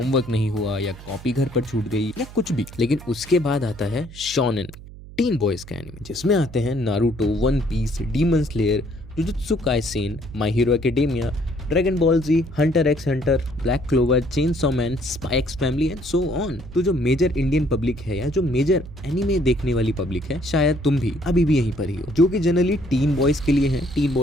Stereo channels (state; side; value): noise; right; hum, 16 dB below the sound